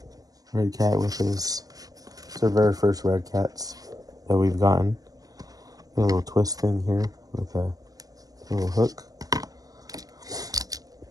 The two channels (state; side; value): late; left; 0.18 ms